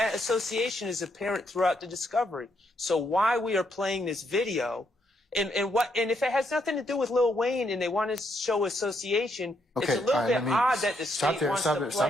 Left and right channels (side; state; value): both; normal; correlation 0.76